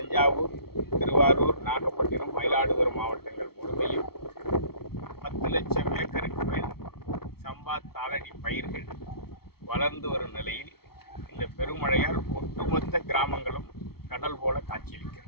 திருவாரூர், நாகப்பட்டினம், மயிலாடுதுறை மாவட்டங்கள் முழுமையும் 10 லட்சம் ஏக்கருக்கு மேல் சம்பா தாளடி பயிர்கள் வளர்ந்து வரும் நிலையில் இந்த பெருமழையால் ஒட்டுமொத்த கிராமங்களும் கடல் போல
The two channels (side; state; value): right; late; 0.95 ms